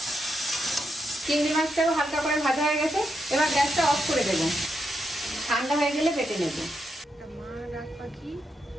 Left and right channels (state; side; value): normal; both; correlation 0.83